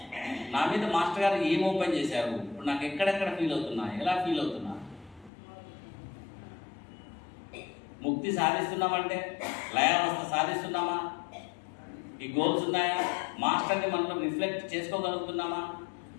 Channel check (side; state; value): right; drops out; at 5.3 s